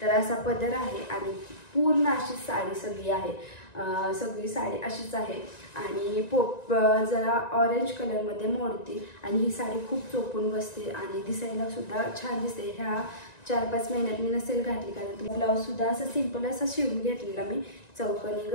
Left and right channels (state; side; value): late; right; 1.9 ms